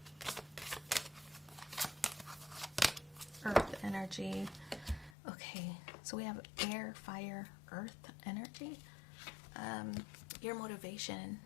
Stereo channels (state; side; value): drops out; right; at 5.2 s